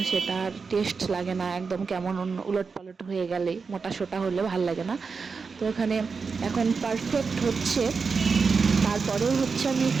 সেটা আর টেস্ট লাগে না, একদম কেমন উলট পালট হয়ে গেলে, মোটা সোটা হলে ভালো লাগে না। তো এখানে এখন পারফেক্ট হচ্ছে। তারপরে হচ্ছে আমি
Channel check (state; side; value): quieter; left; 5.1 dB